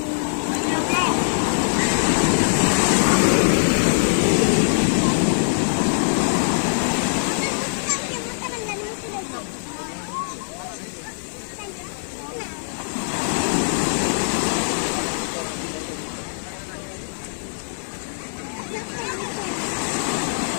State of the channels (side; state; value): right; silent; digital silence